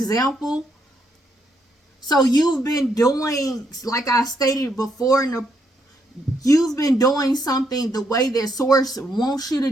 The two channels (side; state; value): both; normal; correlation 0.76